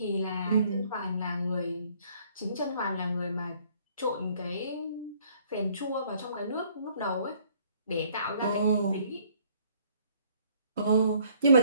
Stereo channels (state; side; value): inverted; both; correlation -0.61